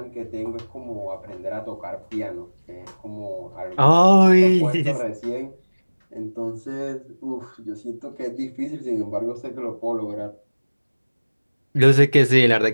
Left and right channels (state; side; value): inverted; both; correlation -1.00